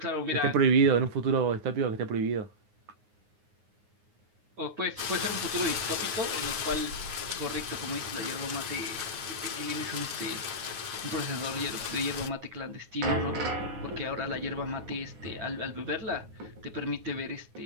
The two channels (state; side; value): late; left; 9.5 ms